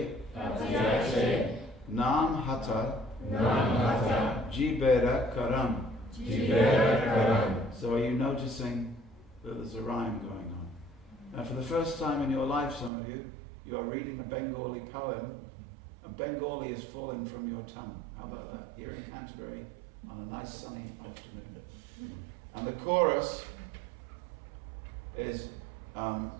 Nam Hata, Jibera Karam. So are you noticing that there's a rhyme going on? Now for the first time in your life, some of you are reading a Bengali poem, and Bengali is falling from your tongue. How about that? Here in Canterbury on a nice sunny afternoon. And the chorus is,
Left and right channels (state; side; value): drops out; left; at 12.9 s